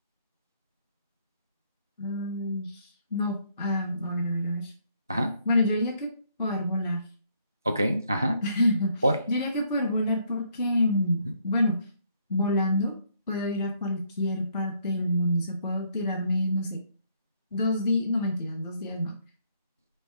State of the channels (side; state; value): both; inverted; correlation -0.69